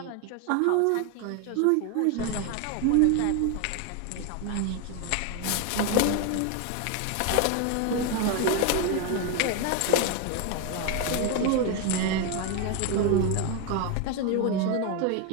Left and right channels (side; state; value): both; different; correlation 0.01